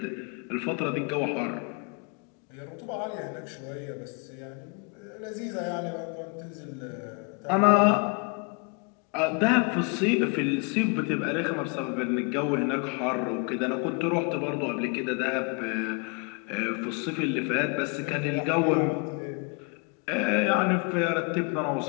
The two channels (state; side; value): quieter; right; 34.8 dB